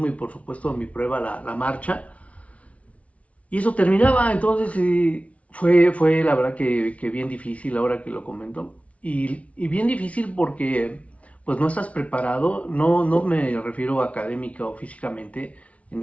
y por supuesto mi prueba, la marcha. Y eso terminaba, entonces fue la verdad que bien difícil ahora que lo comento. Y bien difícil porque pues no estás preparado, no me refiero académica o físicamente, en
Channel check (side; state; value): right; late; 0.065 ms